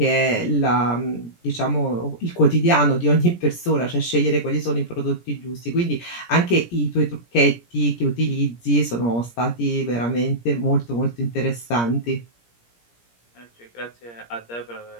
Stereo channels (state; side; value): late; right; 17 ms